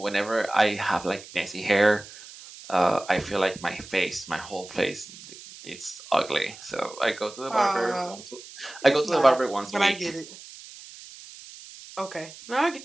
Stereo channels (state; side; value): noise; right; hiss, 17 dB below the sound